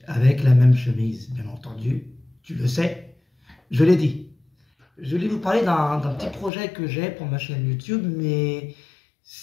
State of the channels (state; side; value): drops out; right; at 6.5 s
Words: avec la même chemise, bien entendu. Tu le sais, je l'ai dit. Je vais vous parler d'un petit projet que j'ai pour ma chaîne YouTube, mais